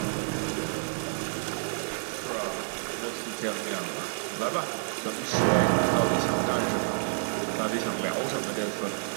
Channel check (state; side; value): silent; left; digital silence